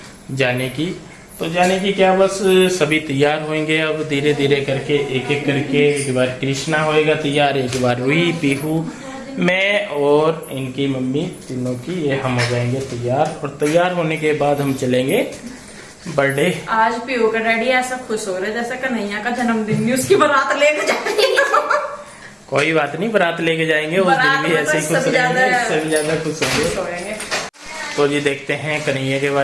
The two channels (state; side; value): identical; both; correlation 1.00